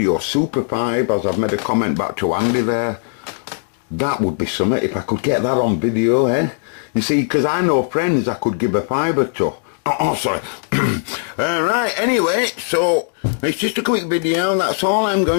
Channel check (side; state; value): right; silent; digital silence